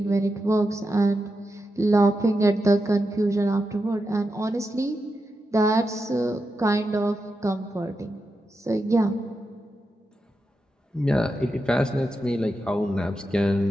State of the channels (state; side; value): normal; both; correlation 0.88